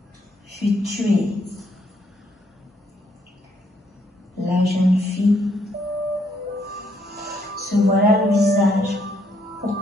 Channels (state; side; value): normal; both; correlation 0.71